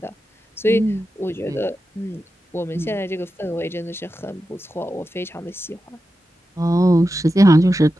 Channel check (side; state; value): both; normal; correlation 0.91